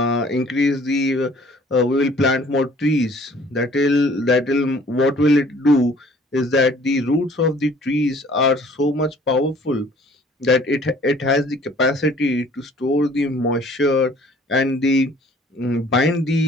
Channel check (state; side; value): normal; both; correlation 0.54